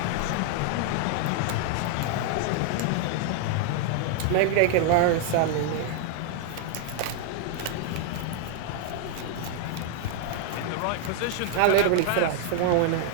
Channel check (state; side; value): different; both; correlation 0.00